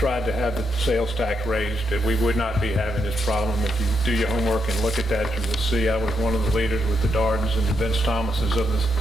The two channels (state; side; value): normal; both; correlation 0.80